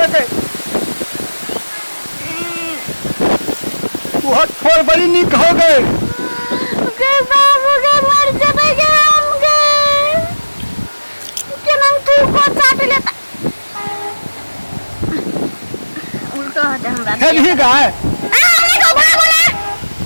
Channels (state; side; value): inverted; both; correlation -1.00